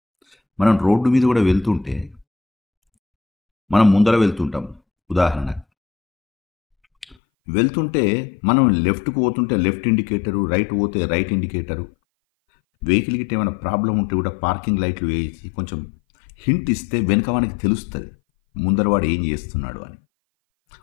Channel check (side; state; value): right; drops out; at 7.2 s